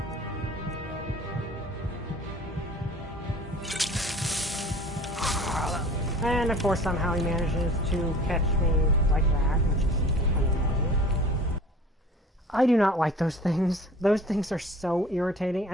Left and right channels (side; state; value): both; normal; correlation 0.46